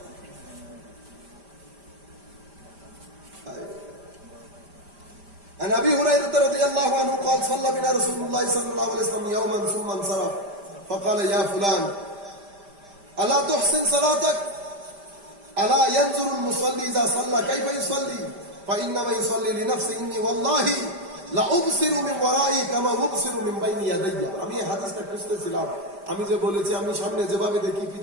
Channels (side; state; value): left; late; 5.0 ms